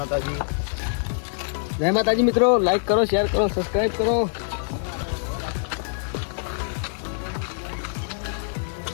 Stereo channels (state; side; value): silent; right; 62 dB below the other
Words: જય માતાજી મિત્રો. લાઈક કરો, શેર કરો, સબસ્ક્રાઇબ કરો.